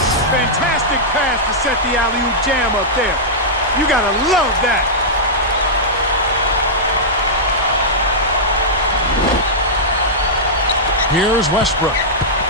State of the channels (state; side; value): normal; both; correlation -0.11